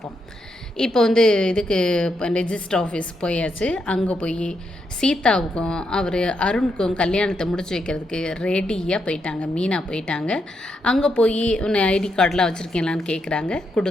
இப்போ இதுக்கு ரெஜிஸ்டர் ஆஃபீஸ் போயாச்சு. அங்கே போய் சீதாவுக்கும் அருணுக்கும் கல்யாணத்தை முடிச்சு வைக்கிறதுக்கு ரெடியாக போயிட்டாங்க. மீனா போயிட்டாங்க. அங்கே போய் ஐடி கார்டெலாம் வச்சுருக்கீங்களான்னு கேட்குறாங்க,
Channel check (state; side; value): normal; both; correlation 0.81